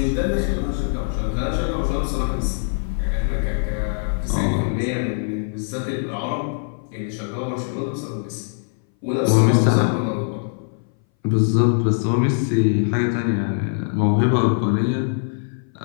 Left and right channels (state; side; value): silent; right; 60 dB below the other